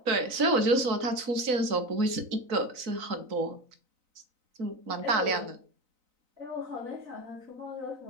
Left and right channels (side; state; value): left; late; 3.9 ms